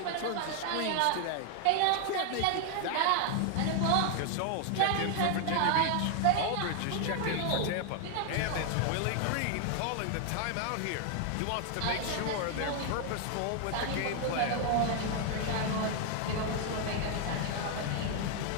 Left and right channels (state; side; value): different; both; correlation 0.00